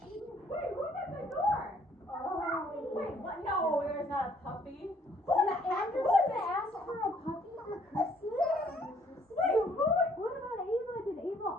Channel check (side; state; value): both; normal; correlation 0.63